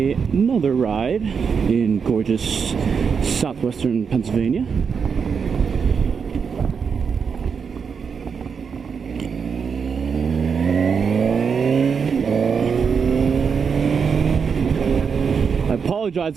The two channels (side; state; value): left; quieter; 6.1 dB